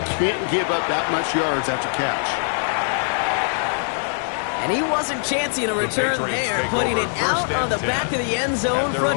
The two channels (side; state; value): right; silent; digital silence